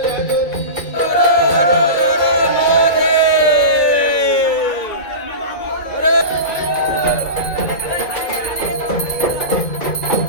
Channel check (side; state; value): right; late; 2.2 ms